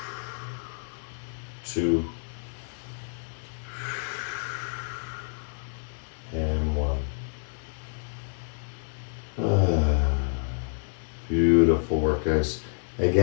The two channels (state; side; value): silent; right; digital silence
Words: 2. And 1. Beautiful.